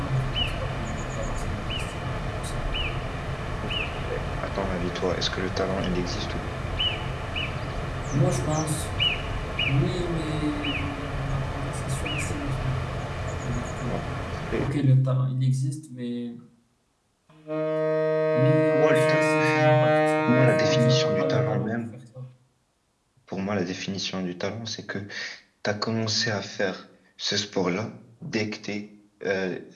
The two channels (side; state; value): both; identical; correlation 1.00